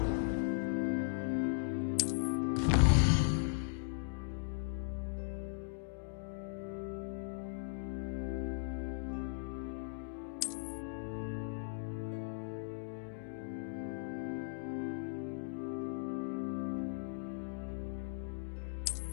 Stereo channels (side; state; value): right; silent; digital silence